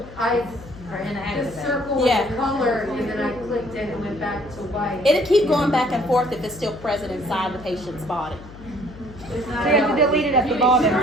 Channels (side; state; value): left; noise; hum, 17 dB below the sound